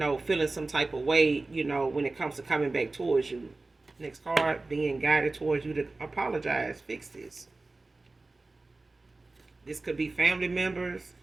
some type of way, when it comes to coming back towards you. Next card, being guided towards you to apologize, fix this. This could be family members.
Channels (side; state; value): left; quieter; 3.3 dB